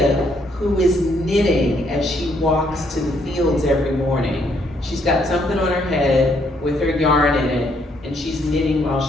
who is knitting as she walks to the fields every morning. She's got something on her head with her yarn in it, and she's knitting while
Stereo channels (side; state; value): both; normal; correlation 0.70